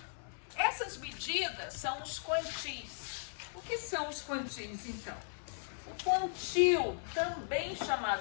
Essas medidas são os quantis. O que são os quantis, então? O quantil, também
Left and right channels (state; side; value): silent; right; digital silence